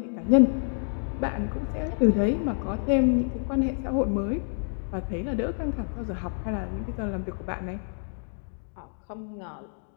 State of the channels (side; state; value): right; silent; 59 dB below the other